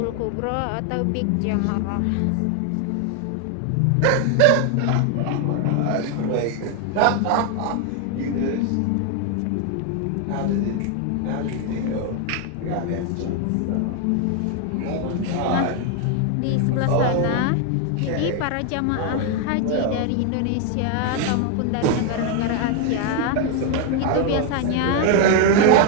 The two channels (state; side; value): different; both; correlation 0.01